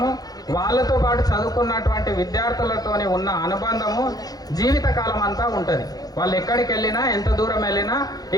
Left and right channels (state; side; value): late; right; 0.18 ms